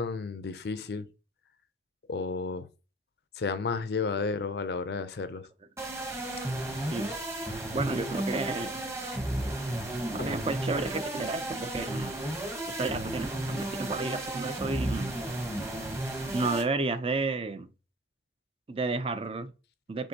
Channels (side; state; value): both; normal; correlation 0.47